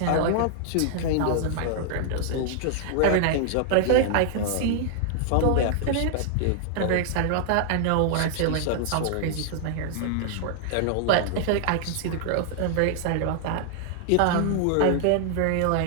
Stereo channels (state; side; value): different; both; correlation -0.01